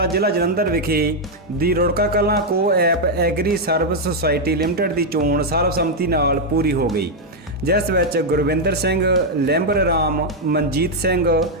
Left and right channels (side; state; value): both; normal; correlation 0.00